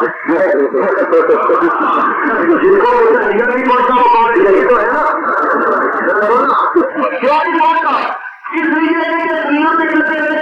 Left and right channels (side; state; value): both; identical; correlation 1.00